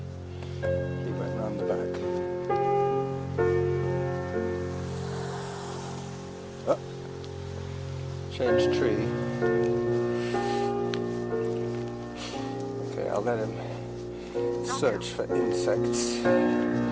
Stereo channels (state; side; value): identical; both; correlation 1.00